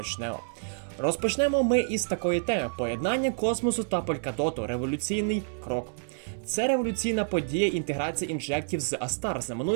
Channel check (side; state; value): left; silent; digital silence